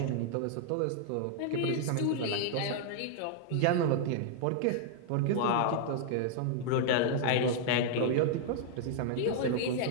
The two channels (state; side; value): different; both; correlation -0.01